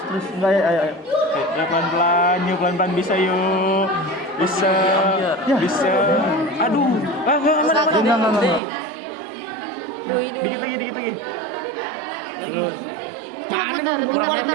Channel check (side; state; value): left; drops out; at 8.6 s